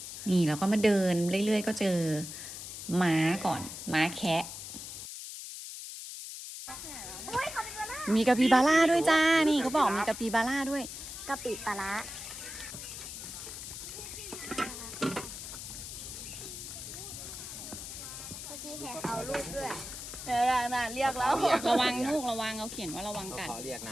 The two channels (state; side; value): noise; left; hiss, 9 dB below the sound